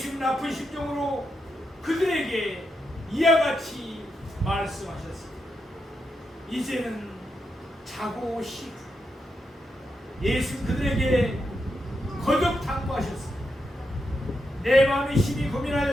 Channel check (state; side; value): normal; both; correlation 0.84